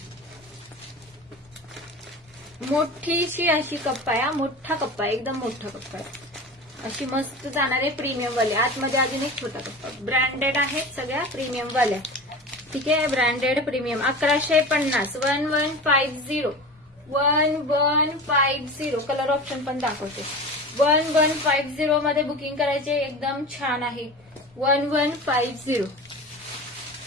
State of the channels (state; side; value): normal; both; correlation 0.32